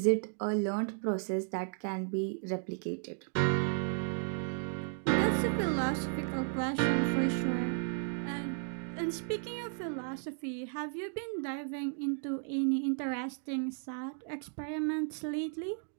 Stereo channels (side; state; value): left; silent; 55 dB below the other